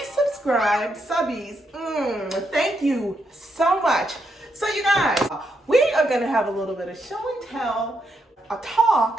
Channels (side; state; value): both; normal; correlation 0.80